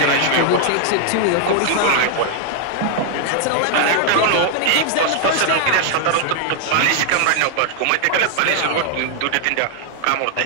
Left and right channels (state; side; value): different; both; correlation 0.00